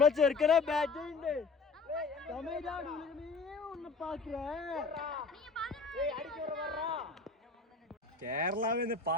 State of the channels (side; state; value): right; quieter; 4.4 dB